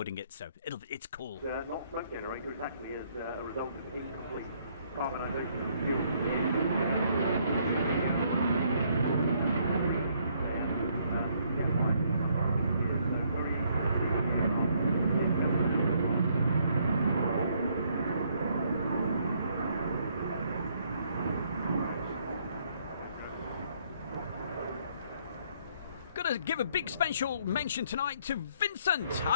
it, so it's cool. Not smoke generator exactly as a result of incomplete carbonisation. Gotta give a big special mention tonight to Vincent.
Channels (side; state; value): both; inverted; correlation -0.68